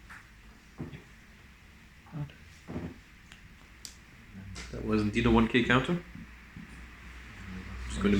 That was indeed a 1k counter. It's going to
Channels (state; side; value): identical; both; correlation 1.00